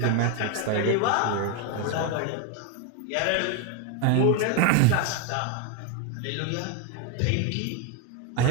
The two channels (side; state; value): both; different; correlation 0.02